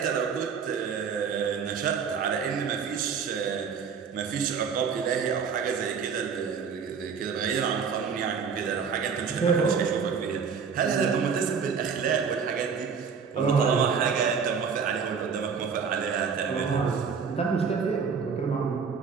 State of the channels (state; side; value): quieter; left; 6.2 dB